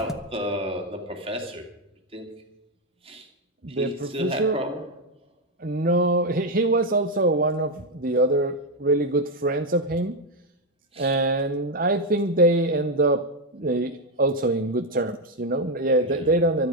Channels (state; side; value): normal; both; correlation 0.05